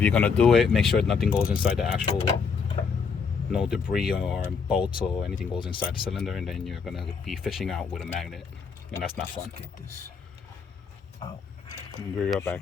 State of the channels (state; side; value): quieter; right; 5.6 dB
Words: you're gonna do it, make sure nothing goes inside the actual, no debris or bolts or anything goes inside the cylinder, and then you're gonna be fishing out with a magnet, and that's not fun. Let's get this out. We'll be right back.